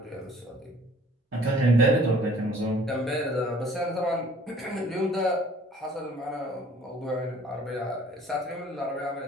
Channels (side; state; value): both; normal; correlation 0.54